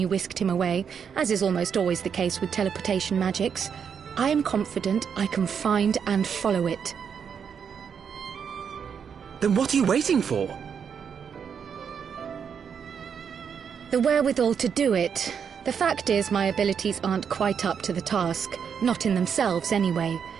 whisked him away, as is almost always the case with teleportation magics, I am confident I can find and follow it. Then what are you waiting for? The wherewithal to do it. The fact is, my abilities aren't quite up to the task. Not in themselves, anyway.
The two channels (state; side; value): quieter; left; 7.1 dB